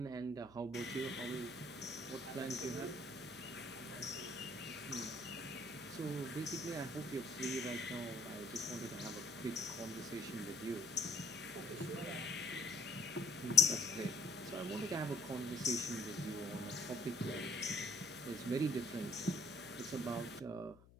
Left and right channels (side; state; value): left; noise; hum, 23 dB below the sound